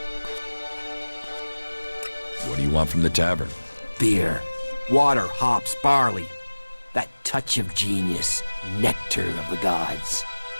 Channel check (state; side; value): inverted; both; correlation -1.00